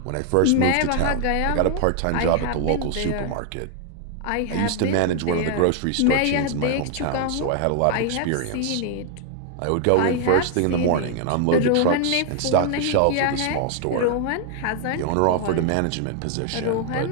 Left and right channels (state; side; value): different; both; correlation 0.00